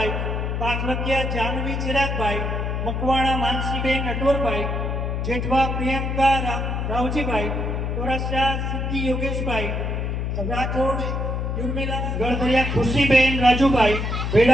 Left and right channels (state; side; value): noise; left; hum, 1 dB below the sound